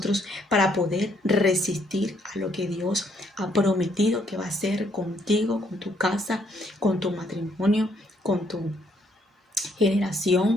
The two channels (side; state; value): both; normal; correlation 0.70